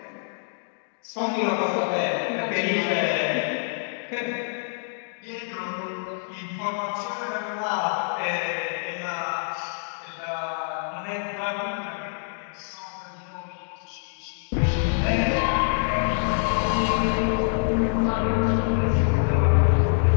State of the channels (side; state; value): right; silent; digital silence